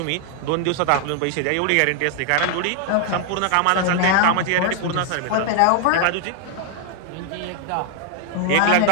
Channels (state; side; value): different; both; correlation 0.00